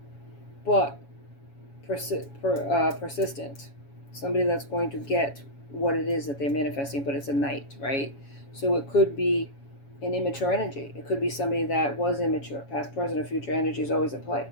but persistent. Somebody that's going to get what it is that they're manifesting, but it's a Knight, right? So it could be an immature energy. It could be somebody that was immature. Past, present, or future energy is always at play.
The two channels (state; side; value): late; right; 7.2 ms